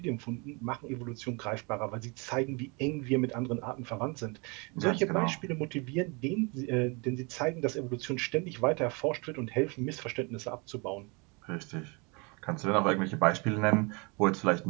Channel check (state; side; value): quieter; left; 30.1 dB